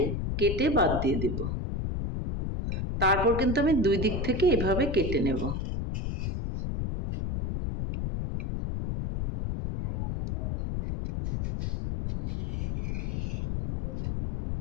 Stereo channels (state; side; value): noise; left; rumble, 2 dB below the sound